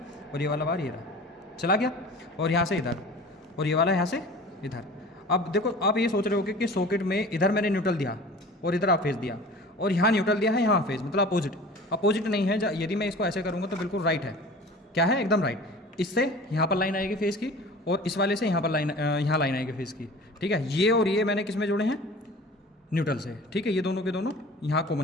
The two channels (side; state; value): both; normal; correlation 0.41